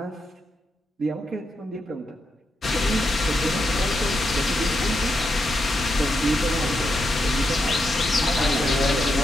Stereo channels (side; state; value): both; normal; correlation 0.83